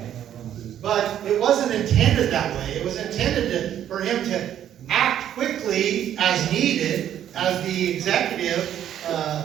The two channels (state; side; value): quieter; left; 10.6 dB